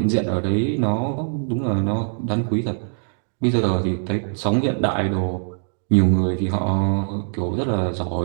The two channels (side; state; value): left; silent; 63 dB below the other